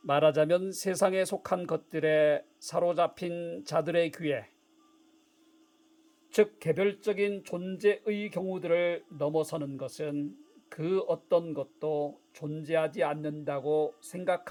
말하자면 세상에 속한 것들에 사로잡힌 자들의 귀에, 즉 개별적인 존재의 경우들을 넘어서는 것은 그 어떤 것도 존재하지 않는다고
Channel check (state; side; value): identical; both; correlation 1.00